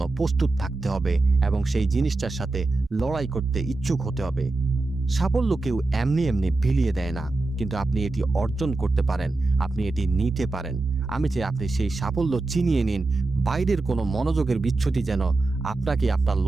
প্রস্তুত থাকতে হবে এবং সেই জিনিসটার সাথে লড়াই করতে ইচ্ছুক হতে হবে। সাফল্য কেউ এমনি এমনি বিলিয়ে দেয় না, কিন্তু আপনি এটি অর্জন করতে পারেন, আপনি এটি নিতে পারেন। আমি চাই আপনি সেই সাফল্য চিনিয়ে নিন, বাইরের কোনো মনোযোগের বিচ্যুতি যেন আপনাকে আপনার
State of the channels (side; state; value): left; quieter; 3.2 dB